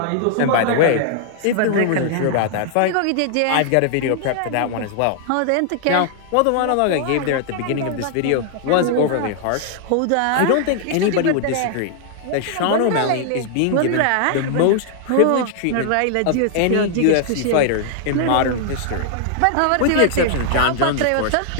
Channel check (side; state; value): both; different; correlation 0.00